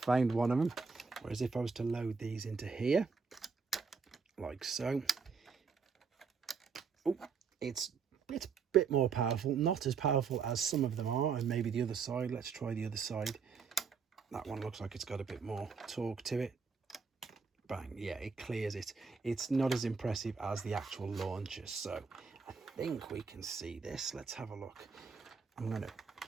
one of them. Whereas if I was to load these into here, like so, oh, it's a bit more powerful. Not as powerful as some of them are, and maybe the other side. Let's try the other side. That one looks like it's got a bit more torque to it. Bang, yeah, it clears it. It's not as impressive as the actual launcher. So I think we can see this. Let's have a look. I'm going to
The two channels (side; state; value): left; quieter; 5.4 dB